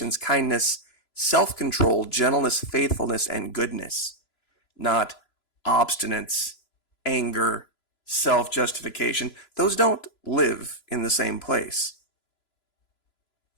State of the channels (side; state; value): right; late; 3.0 ms